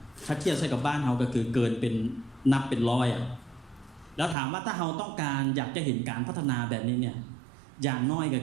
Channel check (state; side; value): drops out; left; at 4.4 s